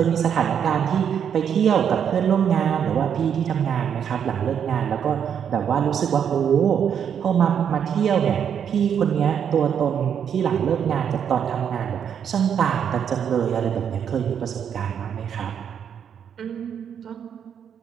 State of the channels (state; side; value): quieter; left; 8.2 dB